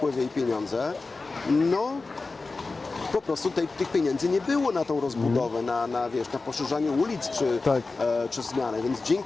i pieniądze, no po prostu tych pieniędzy nie było na tą rozbudowę, na poszerzanie ulic czy zmianę. Więc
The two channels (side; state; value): right; quieter; 3.8 dB